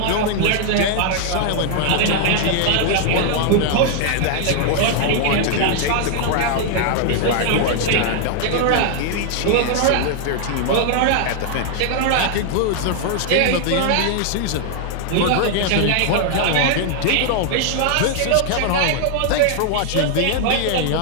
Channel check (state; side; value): different; both; correlation 0.00